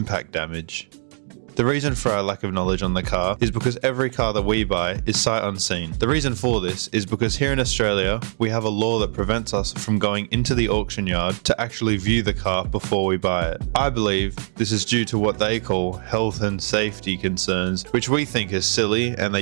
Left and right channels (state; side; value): silent; left; digital silence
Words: damage. The reason for our lack of knowledge on the car is because every car that we buy is sight unseen. The reason for this is because here in Australia, we have a law that prevents us from going into the auction yard to actually view the car before we buy it. I believe this is due to what they call health and safety concerns, which we think is silly, and they